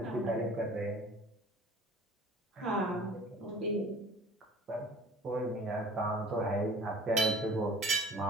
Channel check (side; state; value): both; normal; correlation 0.46